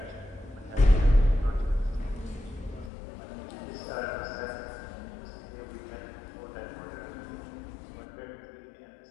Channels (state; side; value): drops out; right; at 2.9 s